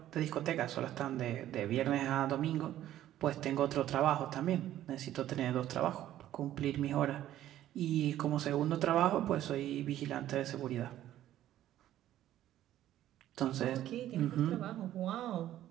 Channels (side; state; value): left; quieter; 12.8 dB